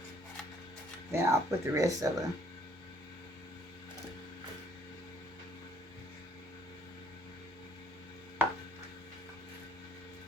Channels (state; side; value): normal; both; correlation 0.64